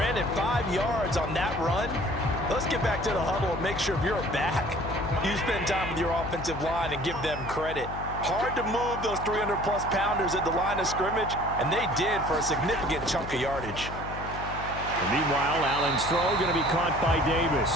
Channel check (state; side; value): noise; left; hum, 9 dB below the sound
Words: 5 yards on that run. Let's get back to the huddle and make sure if you're back, you spend time with your offensive line and give them credit. Hard to move those 300-plus pounders at the line of scrimmage, and they did for a significant chunk of yardage. And meanwhile, Allen's throw going to be caught by